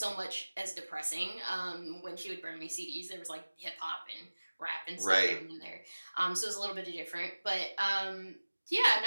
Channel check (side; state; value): both; inverted; correlation -1.00